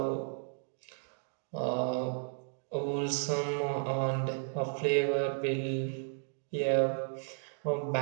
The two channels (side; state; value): left; silent; digital silence